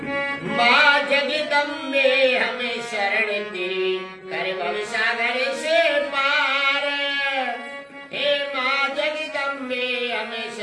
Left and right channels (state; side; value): identical; both; correlation 1.00